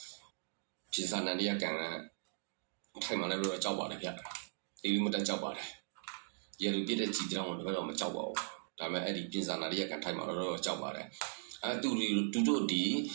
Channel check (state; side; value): silent; left; digital silence